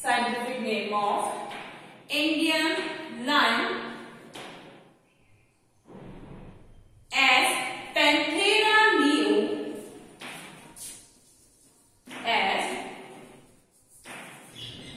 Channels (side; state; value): both; identical; correlation 1.00